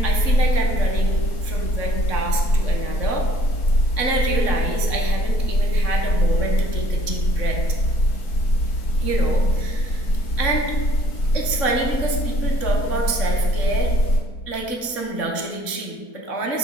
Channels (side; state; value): right; late; 3.6 ms